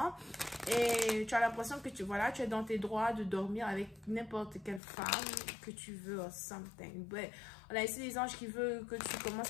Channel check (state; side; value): drops out; right; at 4.8 s